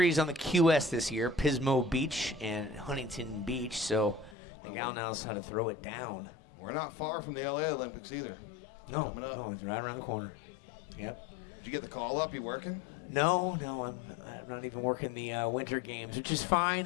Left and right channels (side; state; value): right; drops out; at 4.4 s